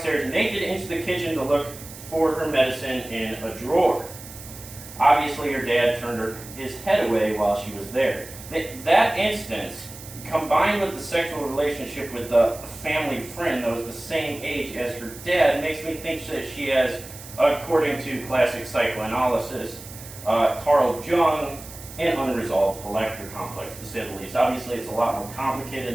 naked into the kitchen to look for her medicine in a drawer. Obviously, her dad turned his head away while she was there. That instance, combined with the sexual relationship with a family friend that was the same age as her dad, makes me think that she has, according to classic psychoanalysis, Carl Jung, an unresolved elector complex, to say the least. Obviously, it's a lot more complicated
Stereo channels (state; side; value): noise; right; hiss, 15 dB below the sound